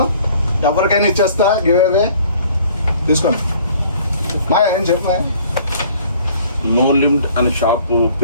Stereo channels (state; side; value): inverted; both; correlation -0.55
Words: ఎవరికైనా ఇచ్చేస్తా గివ్ అవే. తీసుకోండి. బాయ్ ఏం చెప్పా. నో లిమిట్ అనే షాప్